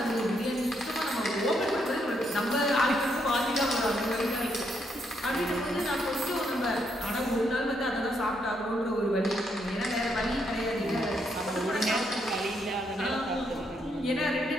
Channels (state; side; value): normal; both; correlation 0.76